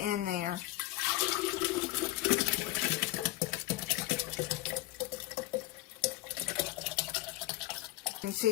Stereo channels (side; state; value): right; quieter; 17.6 dB